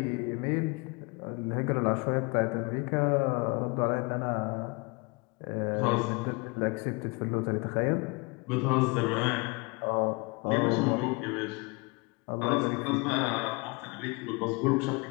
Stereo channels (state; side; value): quieter; right; 29.2 dB